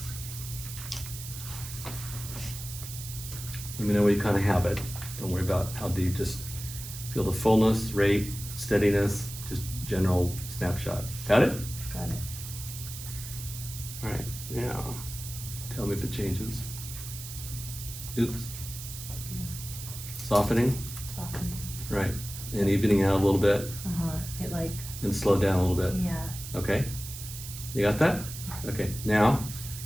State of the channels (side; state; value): right; noise; hiss, 10 dB below the sound